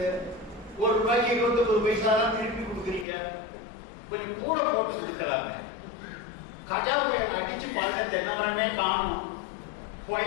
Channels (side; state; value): right; drops out; at 3.1 s